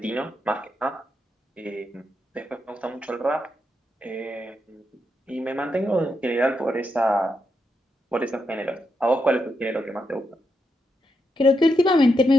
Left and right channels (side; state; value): both; normal; correlation 0.83